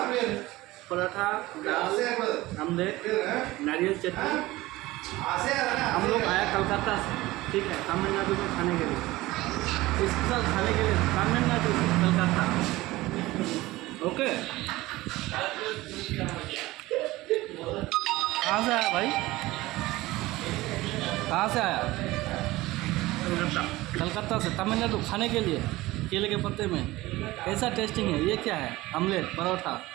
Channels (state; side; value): quieter; left; 18.7 dB